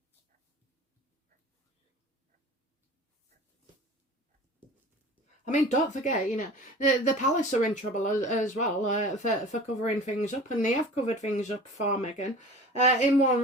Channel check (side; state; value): both; normal; correlation 0.40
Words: I mean, don't forget, you know, the palace are in trouble as well for covering things up, and they have covered things up for Meghan. In one